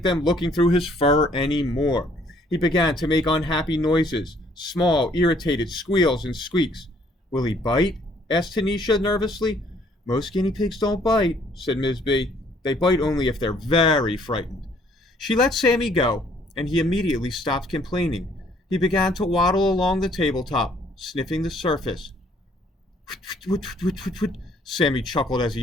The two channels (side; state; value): both; normal; correlation 0.62